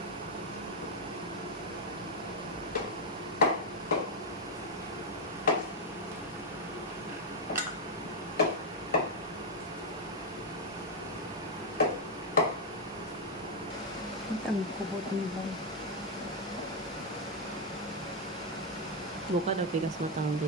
Ang kubot ni ba? Buka daw pikas mo tanong di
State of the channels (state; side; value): normal; both; correlation 0.01